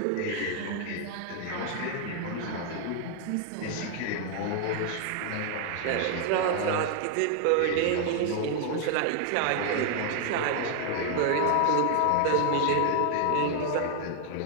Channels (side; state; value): both; different; correlation 0.00